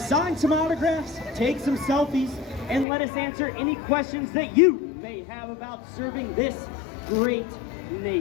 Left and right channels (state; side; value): drops out; right; at 2.9 s